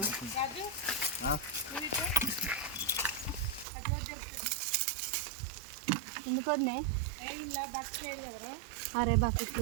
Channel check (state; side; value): drops out; left; at 3.7 s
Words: ఎందుకు వద్దే? అరే బకెట్